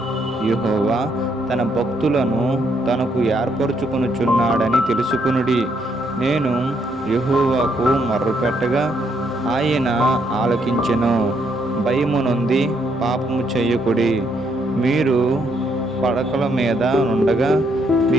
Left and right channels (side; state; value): both; normal; correlation 0.73